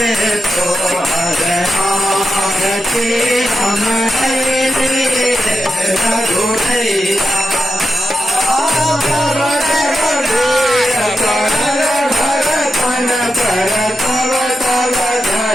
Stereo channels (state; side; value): normal; both; correlation 0.88